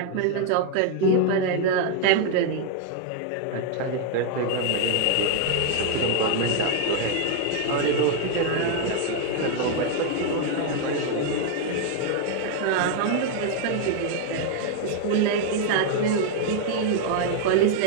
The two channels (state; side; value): different; both; correlation 0.00